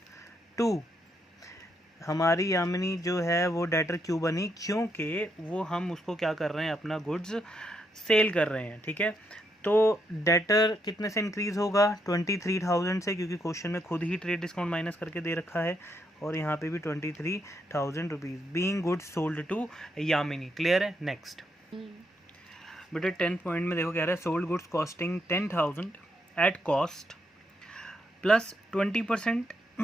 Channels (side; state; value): both; normal; correlation 0.78